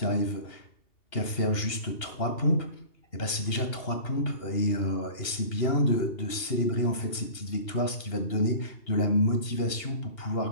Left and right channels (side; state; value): right; late; 2.8 ms